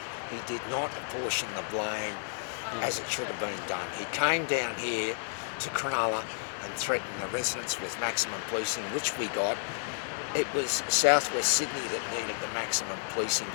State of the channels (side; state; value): right; silent; digital silence